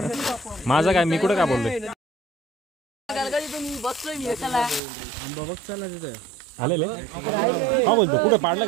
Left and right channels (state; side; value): drops out; left; at 4.8 s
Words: माझा काय मी कुठं काय बोलतोय. आलेले हा बोलतो कुठे पाडला